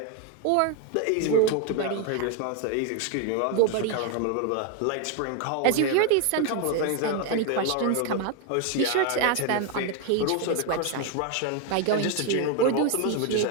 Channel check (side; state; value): both; different; correlation 0.01